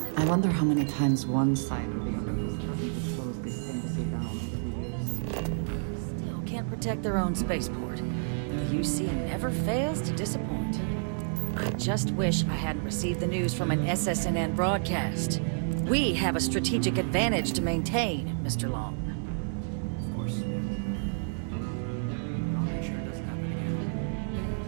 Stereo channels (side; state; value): left; silent; digital silence